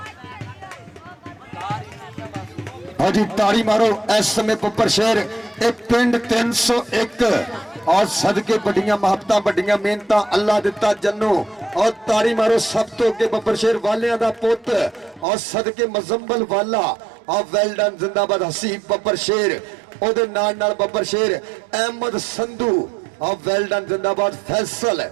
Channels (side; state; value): left; drops out; at 15.2 s